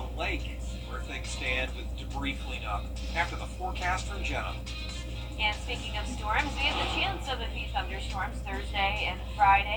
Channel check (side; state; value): both; identical; correlation 1.00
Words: lake, where things stand with debris cleanup. After the forecast from Jenna. And speaking of storms, we have the chance of a few thunderstorms Thursday and